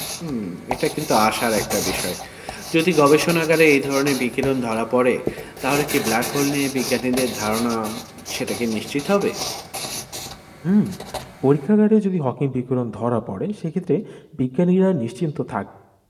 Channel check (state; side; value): identical; both; correlation 1.00